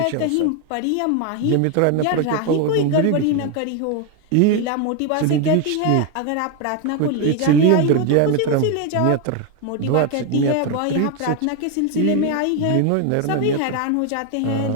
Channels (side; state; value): both; different; correlation 0.01